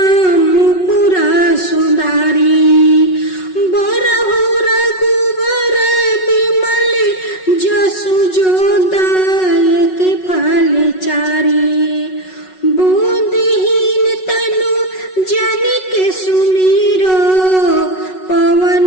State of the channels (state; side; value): late; right; 5.4 ms